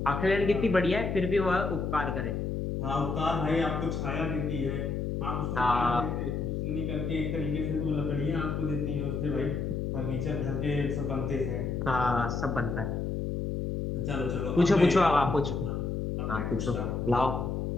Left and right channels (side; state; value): left; noise; hum, 2 dB below the sound